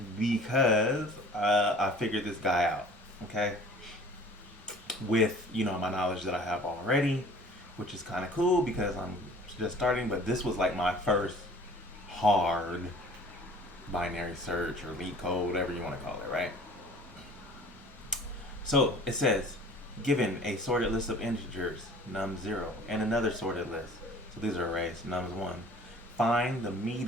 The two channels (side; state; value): both; normal; correlation 0.48